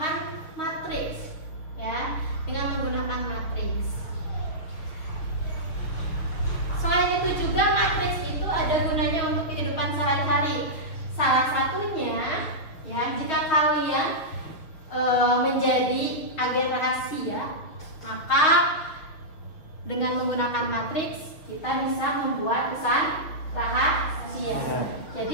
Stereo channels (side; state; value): right; late; 6.6 ms